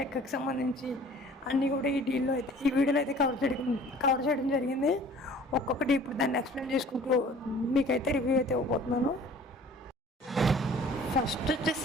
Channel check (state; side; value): normal; both; correlation 0.49